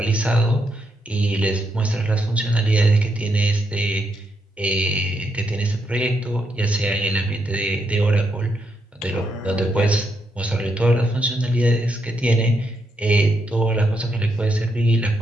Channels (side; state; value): both; normal; correlation 0.80